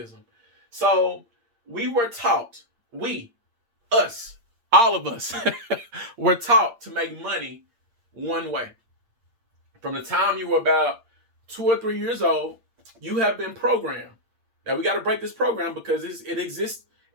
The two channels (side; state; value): left; late; 8.6 ms